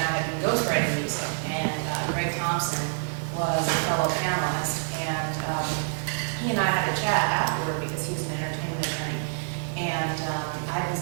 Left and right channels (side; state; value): left; silent; digital silence